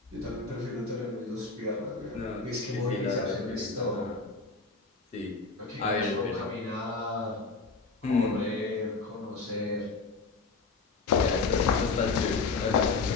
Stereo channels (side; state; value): right; quieter; 4.2 dB